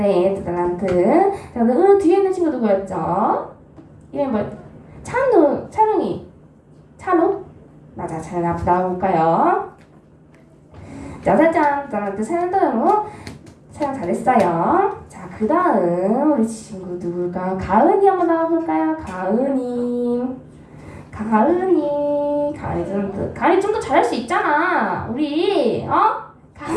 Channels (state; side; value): identical; both; correlation 1.00